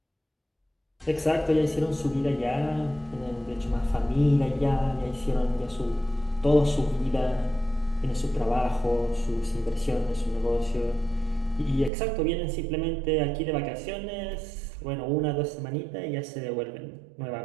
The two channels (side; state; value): left; drops out; at 11.9 s